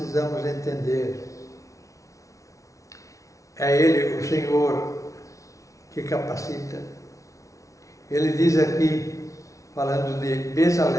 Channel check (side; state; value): right; late; 0.16 ms